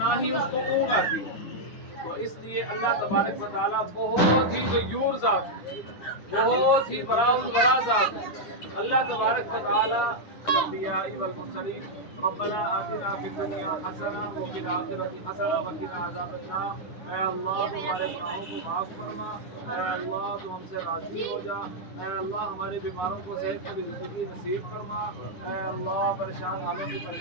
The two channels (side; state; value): right; late; 9.9 ms